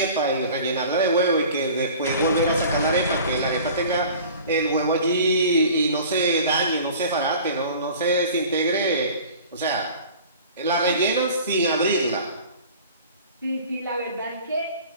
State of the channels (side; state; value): both; inverted; correlation -0.44